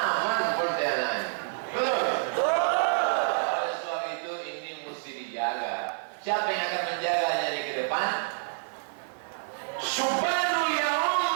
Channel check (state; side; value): silent; left; 59 dB below the other